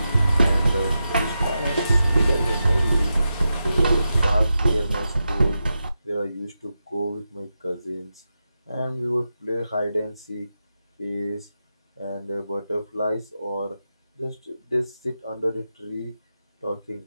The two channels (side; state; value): both; inverted; correlation -0.89